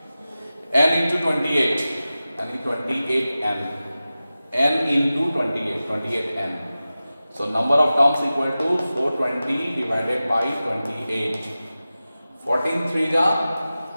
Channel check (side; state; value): both; inverted; correlation -0.95